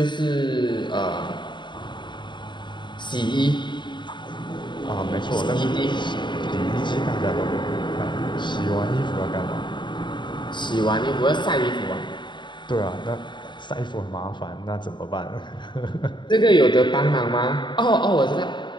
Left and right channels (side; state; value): right; late; 0.22 ms